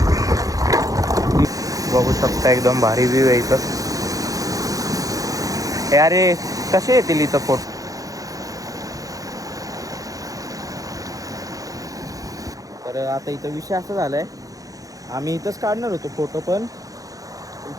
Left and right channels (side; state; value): left; late; 0.17 ms